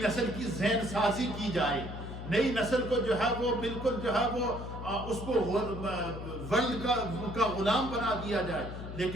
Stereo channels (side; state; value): left; noise; hum, 8 dB below the sound